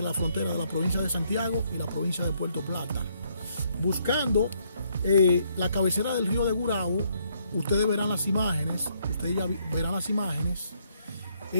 la frontera de la provincia de Santiago y la provincia de Puerto Plata. Buscando la cabecera del río de Gurabo, ustedes verán las imágenes,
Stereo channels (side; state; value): both; inverted; correlation -0.71